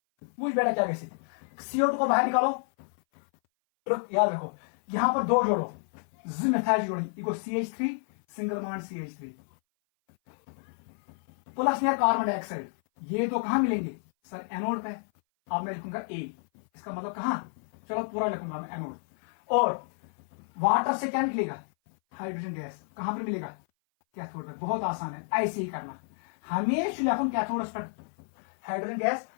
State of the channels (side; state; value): right; silent; 57 dB below the other